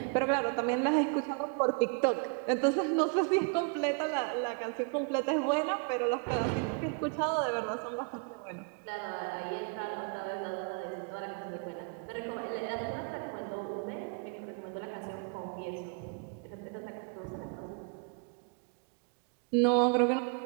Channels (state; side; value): quieter; left; 37.7 dB